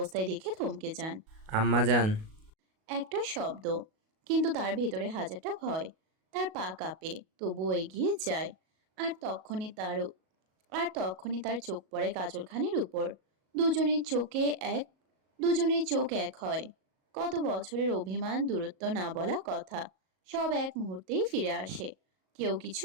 দেখে থমকে যান। আম্মা যান। একটা শব্দ, কিন্তু তার ভেতরে হাজারটা ভয়। তার পা কাঁপে, তবুও এগিয়ে যায়। আর তখনই তার আর তখনই তার চোখ পড়ে কাজল খানের উপর। দুজনের চোখে এক দুজনের চোখ এক হয়। কত বছরের অভিমান, দূরত্ব, না বলা কথা, সব এক মুহূর্তেই ফিরে আসে। কেউ কিছু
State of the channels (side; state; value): left; late; 37 ms